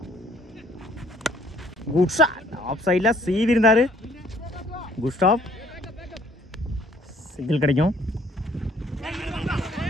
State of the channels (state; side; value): normal; both; correlation 0.60